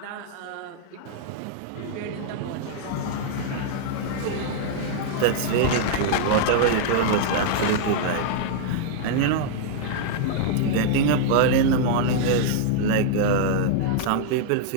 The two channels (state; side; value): different; both; correlation -0.01